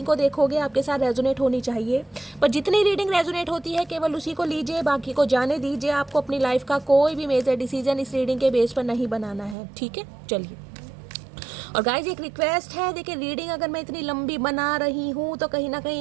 को देखोगे आपके साथ रेजोनेट होनी चाहिए, पर जितनी रीडिंग रेजोनेट होती है केवल उसी को लीजिए, बाकी को जाने दीजिए। आपको अपनी लाइफ का कोई भी मेजर डिसीजन इस रीडिंग के बेस पर नहीं बनाना है, ठीक है? चलिए। और गाइज एक रिक्वेस्ट है, देखिए रीडिंग अगर मैं इतनी लंबी बना रही हूँ तो कहीं ना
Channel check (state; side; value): drops out; left; at 9.6 s